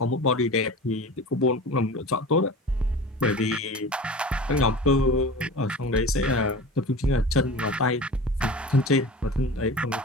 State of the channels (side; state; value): both; normal; correlation 0.34